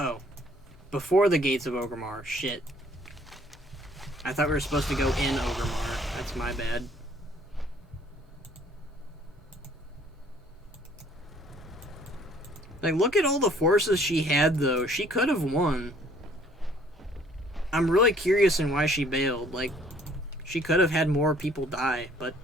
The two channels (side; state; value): both; normal; correlation 0.59